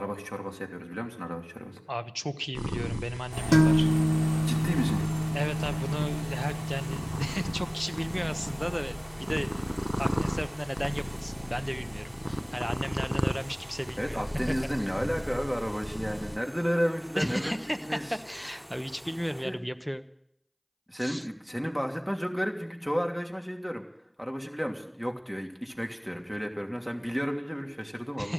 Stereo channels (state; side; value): identical; both; correlation 1.00